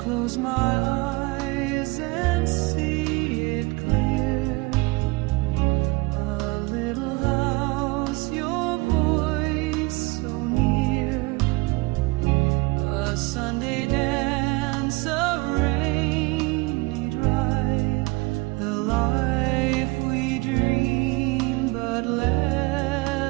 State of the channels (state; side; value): quieter; left; 24.2 dB